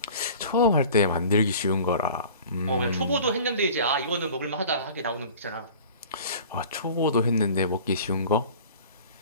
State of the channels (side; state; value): both; inverted; correlation -0.43